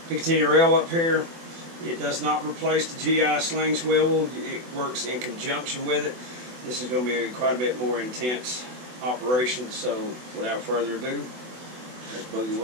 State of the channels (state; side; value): late; left; 24 ms